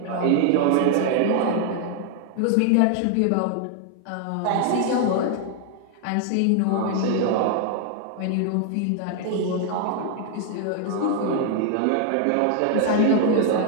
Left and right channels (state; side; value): different; both; correlation 0.00